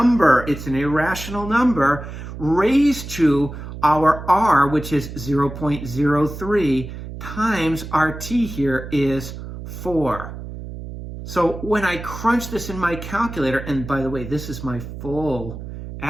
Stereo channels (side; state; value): right; noise; hum, 10 dB below the sound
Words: It's an irrational number raised to our R, which is 0.03, times our T here is 4. So when I crunch this in my calculator, and by the way, this is my full